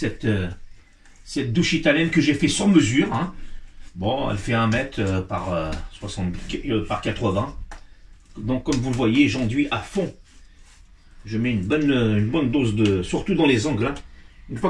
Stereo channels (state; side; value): identical; both; correlation 1.00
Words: douche italienne que j'ai fait sur mesure, hein. Bon, elle fait 1 mètre par par 80. Donc comme vous le voyez, j'enduis à fond. Je mets une bonne dose de, surtout dans les angles, hein. Une fois